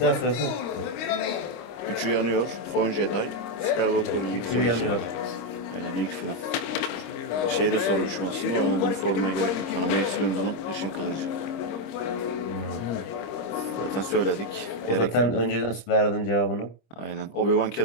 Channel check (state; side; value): late; right; 26 ms